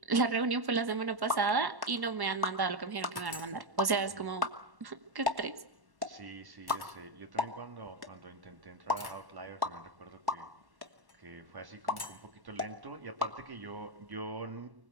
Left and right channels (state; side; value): late; left; 1.1 ms